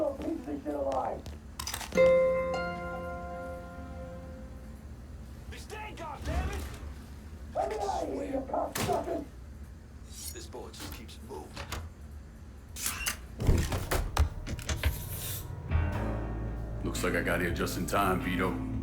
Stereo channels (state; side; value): identical; both; correlation 1.00